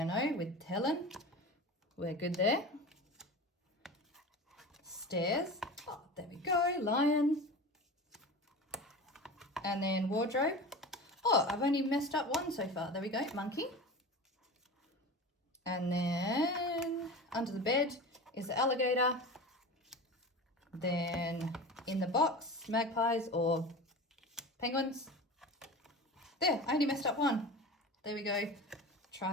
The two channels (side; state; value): both; normal; correlation 0.32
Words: with Helen. We're good there. Stairs. Oh, there we go. Lion. And then wardrobe. Oh, I've only messed up one so far. There we go. Monkey. And then under the bed is the alligator. Then in the box, magpies or penguins. There, I only messed up one. There we go.